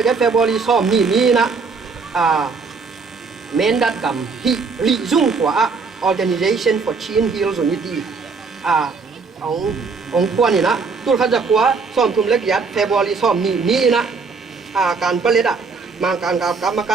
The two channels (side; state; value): left; quieter; 4.7 dB